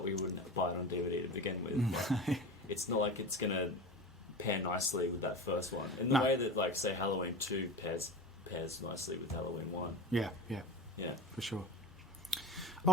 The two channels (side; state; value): both; normal; correlation 0.29